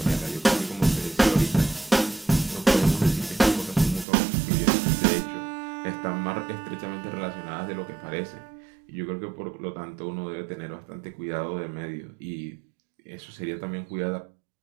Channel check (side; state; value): left; drops out; at 4.0 s